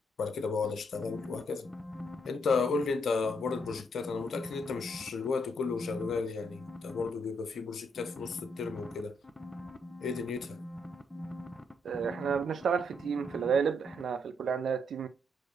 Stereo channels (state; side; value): normal; both; correlation 0.75